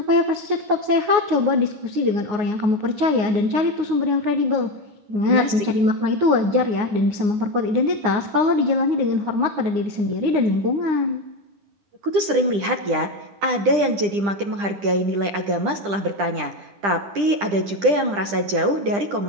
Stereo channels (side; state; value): left; late; 10 ms